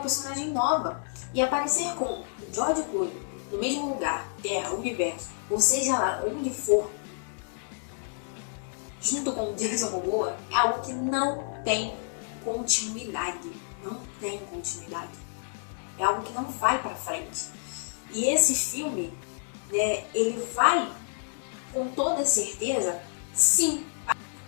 nova. E aparecer com o George Clooney no mesmo lugar, terra, universo, ou seja lá, onde for, junto com o Jason Momoa, é algo que não tem continuidade. Não tem continuidade. É algo que não vai pra frente. E esse filme, né, ele vai, com toda certeza, sim,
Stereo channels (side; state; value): right; silent; digital silence